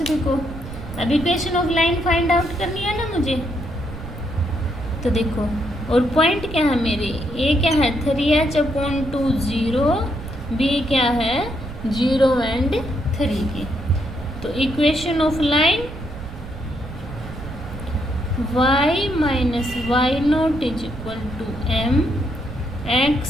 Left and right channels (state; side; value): noise; right; rumble, 11 dB below the sound